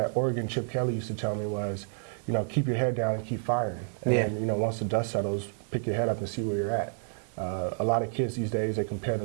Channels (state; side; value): silent; left; 58 dB below the other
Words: Oregon, Chip Kelly, used to tell me was, you know, keep your head down and keep firing. And then, you know, once the dust settles, pick your head up and see where you're at. A lot of kids these days, they compare